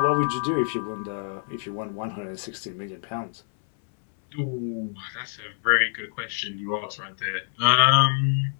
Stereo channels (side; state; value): right; silent; 61 dB below the other